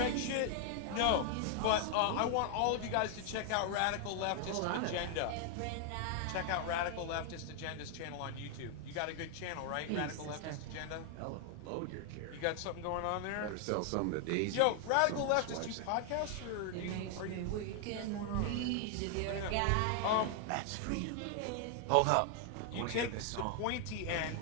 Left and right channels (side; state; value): both; different; correlation 0.00